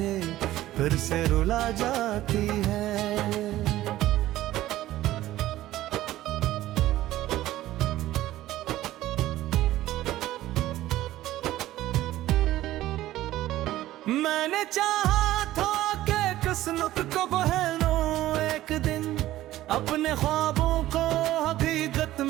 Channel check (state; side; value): quieter; left; 15.0 dB